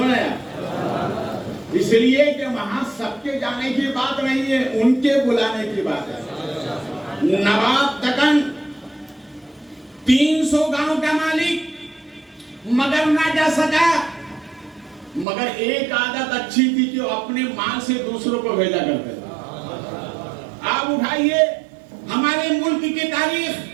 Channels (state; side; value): drops out; left; at 15.2 s